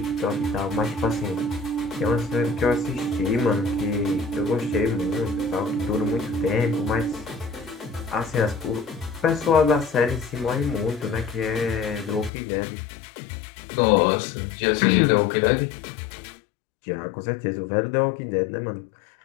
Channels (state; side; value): drops out; right; at 12.3 s